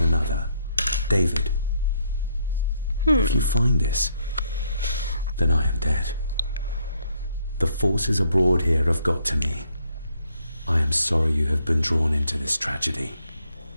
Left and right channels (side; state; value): both; inverted; correlation -0.72